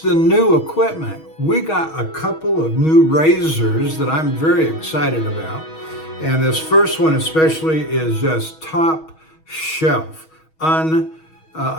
the new equipment. We got a couple of new razors that I'm very excited about. And this first one especially is just top shelf.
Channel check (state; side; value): late; right; 6.3 ms